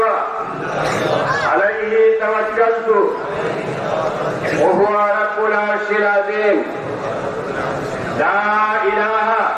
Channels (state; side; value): identical; both; correlation 1.00